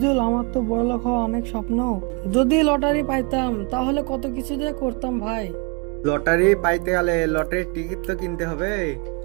আমার তো বড়লোক হওয়া অনেক স্বপ্ন। যদি লটারি পাইতাম তাহলে কত কিছু যে করতাম ভাই। লটারি পাইতে গেলে লটারির টিকিট তো কিনতে হবে।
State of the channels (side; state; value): left; quieter; 30.6 dB